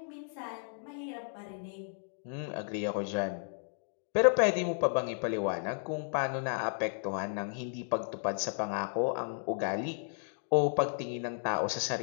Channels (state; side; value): silent; right; 55 dB below the other